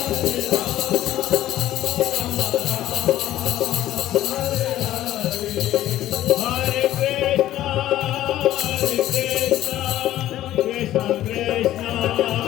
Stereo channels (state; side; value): quieter; right; 13.6 dB